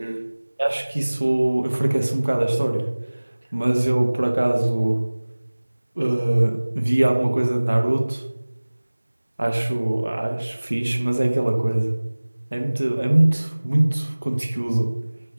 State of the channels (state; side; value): inverted; both; correlation -1.00